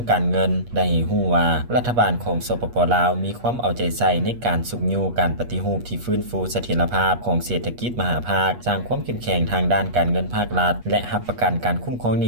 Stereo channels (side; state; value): left; late; 8.4 ms